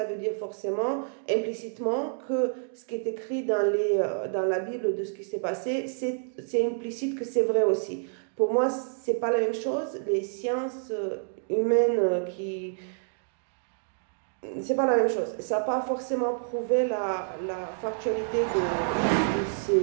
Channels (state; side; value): silent; left; digital silence